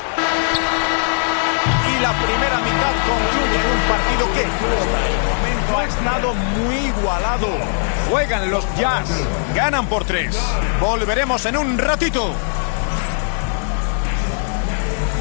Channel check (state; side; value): silent; right; 67 dB below the other